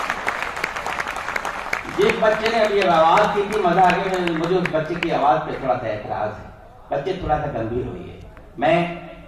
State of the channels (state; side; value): identical; both; correlation 1.00